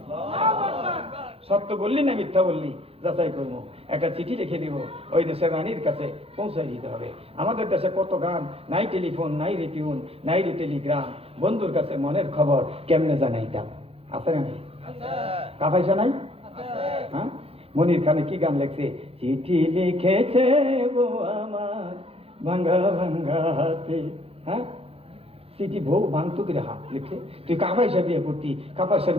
সত্য বললি না মিথ্যা বললি যাচাই করবো, একটা চিঠি লিখে দিব, ওই দেশের রানীর কাছে পৌঁছাই দিতে হবে। আমাদের দেশে কত গান, নাই টেলিফোন, নাই রিটিউন, নাই টেলিগ্রাম, বন্ধুর কাছে মনের খবর কেমনে জানাইতাম, আছে না? কা পয়সা নাই? হ্যাঁ, মনির খানে কি গান লেখছে, চিঠি লিখেছে বউ আমার ভাঙ্গা ভাঙ্গা হাতে, হ্যাঁ চিঠি বউ ভাঙতো করে হাত লিখছে। তুই কাপাইসা বিয়ে করতি, কাপাইসার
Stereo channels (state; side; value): late; left; 0.28 ms